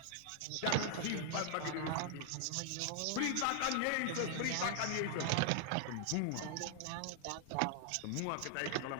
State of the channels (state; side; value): different; both; correlation 0.00